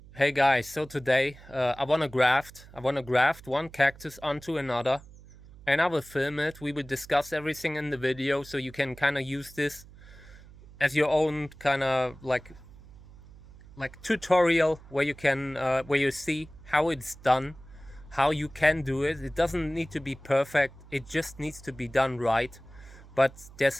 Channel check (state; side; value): noise; right; hum, 20 dB below the sound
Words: Hey guys, so today I wanna graft one cactus onto another, and I will film it. We will discuss everything in the video, so you can kind of use this as your own kind of like tutorial where you can where you see how it's done, how you can do it. It doesn't need to be perfect. It just needs to be done right. But